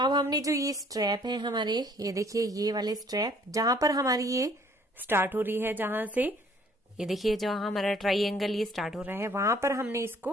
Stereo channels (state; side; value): normal; both; correlation 0.59